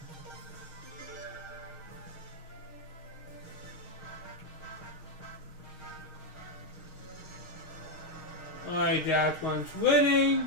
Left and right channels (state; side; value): late; right; 6.4 ms